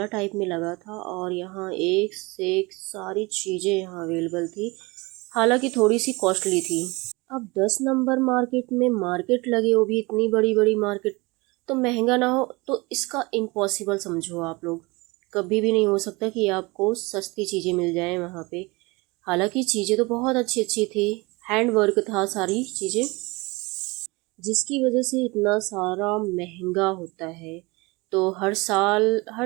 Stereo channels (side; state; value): left; quieter; 24.7 dB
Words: टाइप में लगा था और यहाँ एक से एक सारी चीज़ें यहाँ अवेलेबल थी, हालांकि थोड़ी सी कॉस्टली थी। अब 10 नंबर मार्केट में मार्केट लगे, वो भी इतनी बड़ी बड़ी मार्केट, तो महंगा ना हो तो इसका इम्पॉसिबल समझो आप लोग। कभी भी नहीं हो सकता कि आपको सस्ती चीज़ें मिल जाएं वहाँ पे। हालांकि चीज़ें तो बहुत अच्छी अच्छी थी, हैंड वर्क था सारी चीज़ें, जिसकी वजह से इतना सारा महंगा होता है। तो हर साल